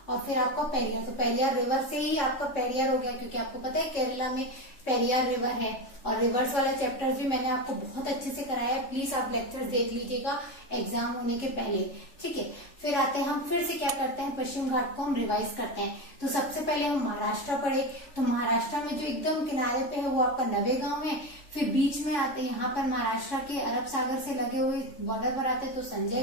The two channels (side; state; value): right; late; 3.4 ms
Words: और फिर आपका पेरियार। तो पेरियार रिवर से ही आपका पेरियार हो गया, क्योंकि आपको पता है केरला में पेरियार रिवर है। और रिवर्स वाला चैप्टर्स भी मैंने आपको बहुत अच्छे से कराया है, प्लीज आप लेक्चर्स देख लीजिएगा एग्जाम होने के पहले। ठीक है, फिर आते हैं हम, फिर से क्या करते हैं, पश्चिम घाट को हम रिवाइज करते हैं। तो सबसे पहले हम महाराष्ट्र पढ़े, तो महाराष्ट्र में जो एकदम किनारे पे है वो आपका नवेगांव है। फिर बीच में आते हैं यहाँ पर महाराष्ट्र के अरब सागर से लगे हुए बॉर्डर पर आते हैं, तो